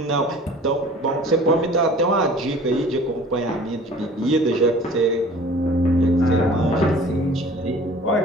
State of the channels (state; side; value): normal; both; correlation 0.47